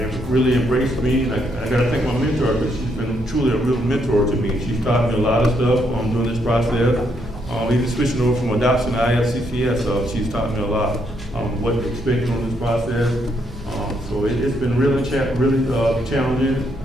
have really embraced me. And I got to thank my mentor because she's been truly a real mentor to me. She's taught me a lot of stuff during this process. Even switching over from adoption to IFCCS, she's taught me a lot what to expect on this process. So it's been really challenging.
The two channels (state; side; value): normal; both; correlation 0.75